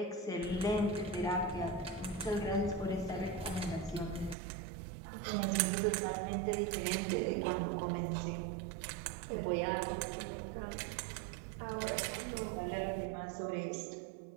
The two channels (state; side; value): drops out; left; at 4.4 s